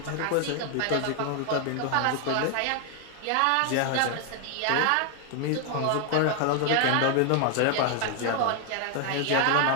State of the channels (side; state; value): both; different; correlation 0.00